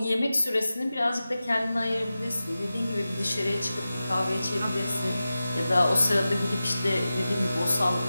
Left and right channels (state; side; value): inverted; both; correlation -0.94